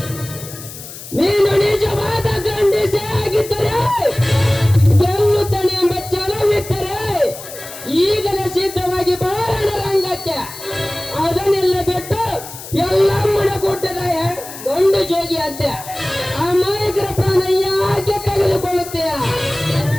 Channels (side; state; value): left; noise; hiss, 13 dB below the sound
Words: ನೀನು ನಿಜವಾದ ಗಂಡಸೇ ಆಗಿದ್ದರೆ, ಗೆಲ್ಲುತ್ತಾನೆ ಎಂಬ ಛಲವಿದ್ದರೆ ಈಗಲೇ ಸಿದ್ಧವಾಗಿ ಬಾರಣ ರಂಗಕ್ಕೆ. ಅದನ್ನೆಲ್ಲ ಬಿಟ್ಟು ಎಲ್ಲಮ್ಮನ ಗುಡ್ಡದ ಗಂಡು ಜೋಗಿ ಅಂತೆ ಅಮಾಯಕರ ಪ್ರಾಣ ಯಾಕೆ ತೆಗೆದುಕೊಳ್ಳುತ್ತೀಯ?